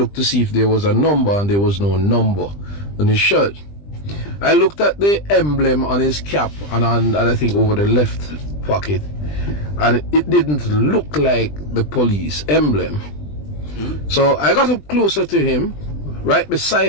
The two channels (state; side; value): late; right; 20 ms